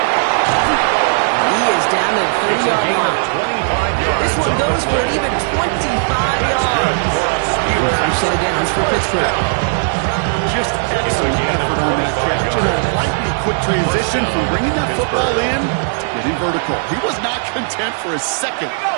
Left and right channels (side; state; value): left; silent; digital silence